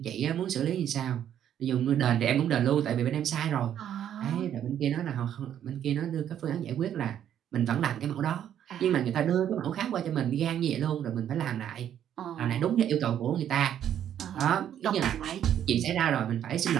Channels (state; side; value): quieter; left; 10.1 dB